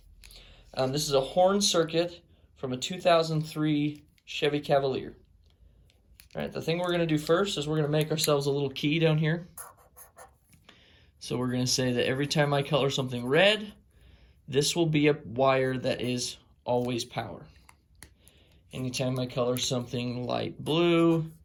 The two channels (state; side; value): identical; both; correlation 1.00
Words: This is a horn circuit from a 2003 Chevy Cavalier. All right, the thing we're going to do first is we're going to make ourselves a little key down here. So we're going to say that every time I color something red, this will be a wire that is always power. Anytime I color something light blue,